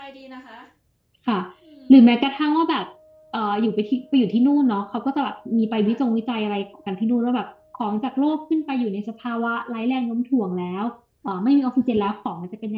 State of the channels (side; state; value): both; identical; correlation 1.00